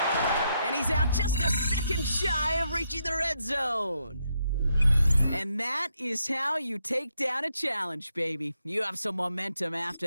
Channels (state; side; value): inverted; both; correlation -0.79